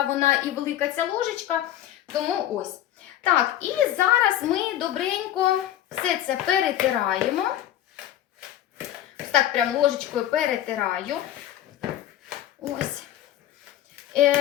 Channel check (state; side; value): quieter; right; 12.4 dB